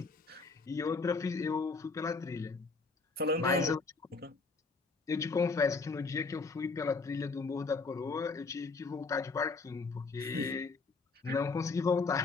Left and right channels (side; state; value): right; quieter; 4.2 dB